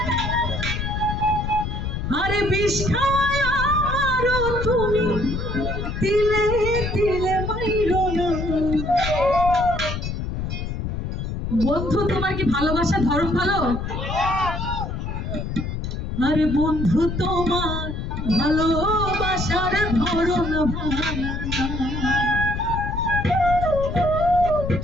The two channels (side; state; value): left; noise; rumble, 4 dB below the sound